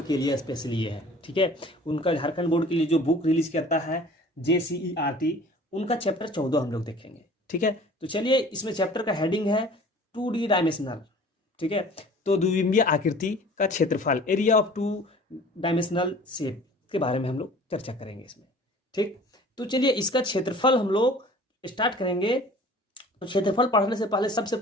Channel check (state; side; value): normal; both; correlation 0.47